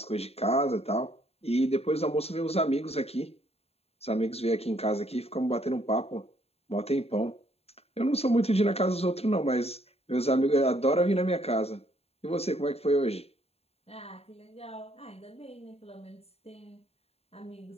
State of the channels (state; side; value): late; right; 0.29 ms